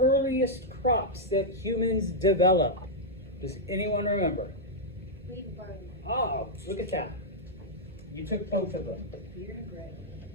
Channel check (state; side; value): noise; right; hum, 22 dB below the sound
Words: crops that humans developed. Does anyone remember? Wheat and barley. Oh, look at that. You took both of them. Beer and bread.